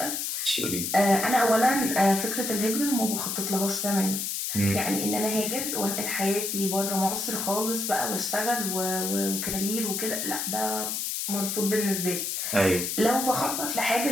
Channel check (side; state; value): left; noise; hiss, 2 dB below the sound